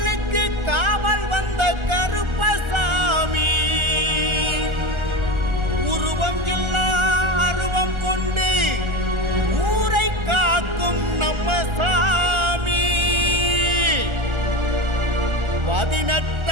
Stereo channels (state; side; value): late; left; 1.3 ms